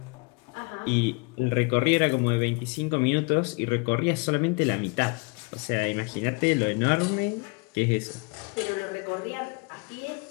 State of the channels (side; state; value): right; quieter; 31.2 dB